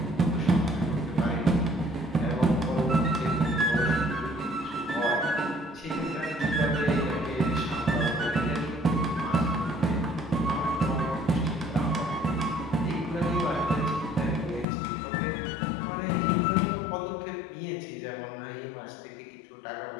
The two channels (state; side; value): drops out; right; at 14.7 s